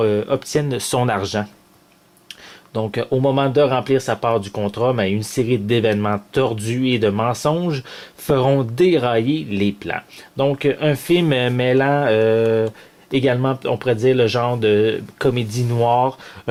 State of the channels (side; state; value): both; identical; correlation 1.00